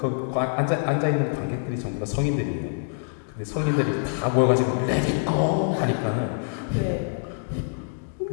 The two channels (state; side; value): silent; right; digital silence